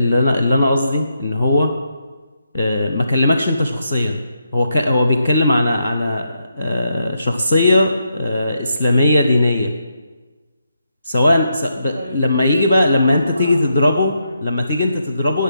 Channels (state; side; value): inverted; both; correlation -0.82